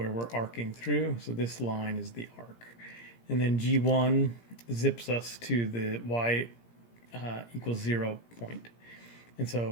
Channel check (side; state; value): right; late; 17 ms